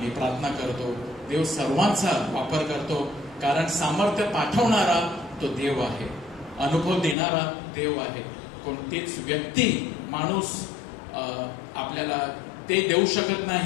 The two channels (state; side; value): drops out; right; at 7.2 s